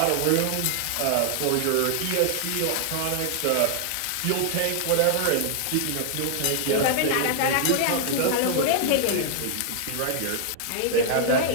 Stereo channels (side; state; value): both; different; correlation -0.01